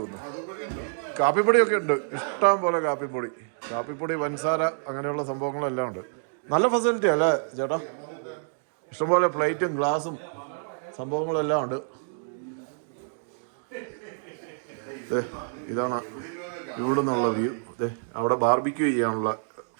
കാപ്പിപ്പൊടിയൊക്കെ ഉണ്ട്, ഇഷ്ടം പോലെ കാപ്പിപ്പൊടി, പഞ്ചസാര, അങ്ങനെയുള്ള സംഭവങ്ങളെല്ലാം ഉണ്ട്. നല്ല ഫെസിലിറ്റി അല്ലേ ചേട്ടാ? ഇഷ്ടംപോലെ പ്ലേറ്റും ഗ്ലാസും സംഭവങ്ങളെല്ലാം ഉണ്ട്. ഇതാണ് ഇവിടെ നിന്നുള്ള വ്യൂ. അവിടെ ബാർബിക്യൂ ചെയ്യാനുള്ള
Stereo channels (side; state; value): left; silent; digital silence